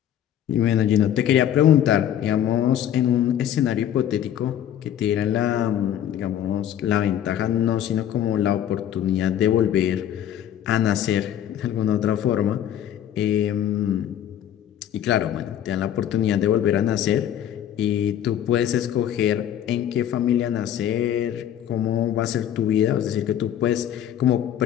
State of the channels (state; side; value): quieter; right; 10.6 dB